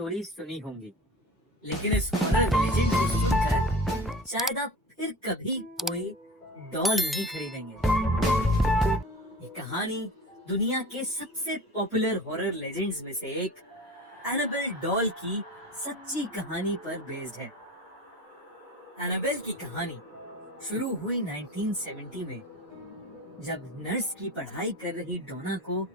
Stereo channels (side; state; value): both; normal; correlation 0.36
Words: सुनी होंगी, लेकिन इस हॉरर लेजेंड को सुनकर शायद आप फिर कभी कोई डॉल नहीं खरीदेंगे। ये कहानी दुनिया के सबसे पॉपुलर हॉरर लेजेंड्स में से एक एनाबेल डॉल की सच्ची कहानी पर बेस्ड है। एनाबेल की कहानी शुरू हुई 1970 में, जब नर्स की पढ़ाई कर रही डोना को